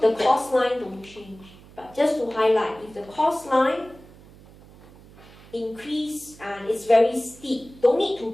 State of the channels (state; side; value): noise; right; hum, 22 dB below the sound